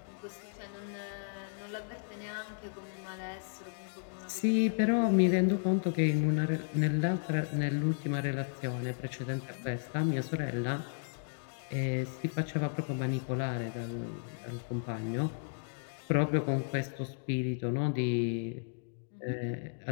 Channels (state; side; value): silent; right; digital silence